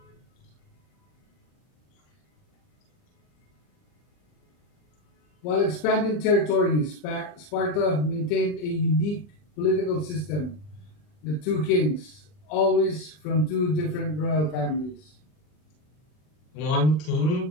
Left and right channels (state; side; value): late; right; 39 ms